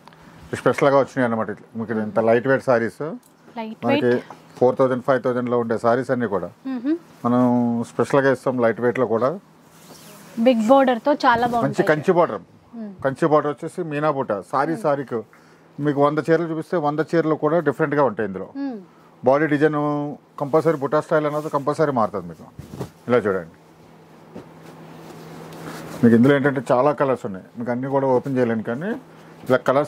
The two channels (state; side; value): identical; both; correlation 1.00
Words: స్పెషల్గా వచ్చినాయి అన్నమాట. మీకు ఇంత లైట్ వెయిట్ సారీస్ మనకి 4000, 5000లో ఉండే సారీస్ అన్ని కూడా మనం స్పెషల్గా ఇస్తాం. లైట్ వెయిట్లో కూడా బిగ్ బోర్డర్ తో చాలా బాగుంది. మంచి కంచి బార్డర్ వచ్చేసి మీనా బూట. సారీకి మీకు 100 చీరలు చూపిస్తే 100 చీరలు కూడా డిఫరెంట్గా ఉంటాయి. ఇందులో బాడీ డిజైన్ కంపల్సరీ బుటా స్టైల్ అనేది కంపల్సరీ మారుతుంది మీకు. ఇలా చూడండి, మీకు ఇందులో ఏంటంటే చాలా కలర్స్ ఉన్నాయి. మీకు అన్నీ కూడా ఓపెన్ చేయలేను, కానీ ఇలా